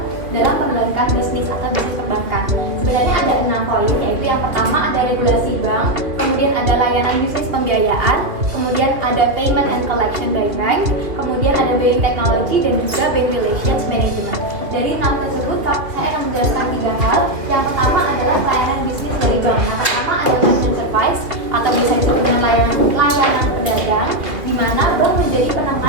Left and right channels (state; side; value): late; left; 2.5 ms